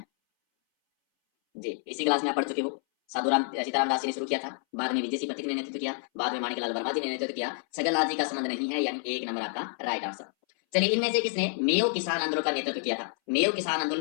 जी, इसी क्लास में आप पढ़ चुके हो। साधुराम सीताराम दास जी ने शुरू किया था, बाद में विजय सिंह पथिक ने नेतृत्व किया, बाद में माणिकलाल वर्मा जी ने नेतृत्व किया। छगनलाल जी का संबंध नहीं है, यानी 1 नंबर आपका राइट आंसर। चलिए इनमें से किसने मेयो किसान आंदोलन का नेतृत्व किया था? मेयो किसान आंदोलन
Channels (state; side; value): silent; right; 59 dB below the other